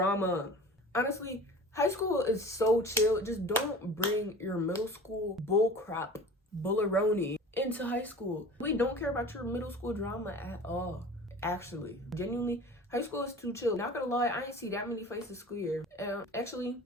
Honestly, high school is so chill. Just don't bring your middle school bullcrap, bullaroni into high school. We don't care about your middle school drama at all. Actually, genuinely, high school is too chill. Not gonna lie, I ain't see that many fights this school year. Actually,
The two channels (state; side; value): normal; both; correlation 0.40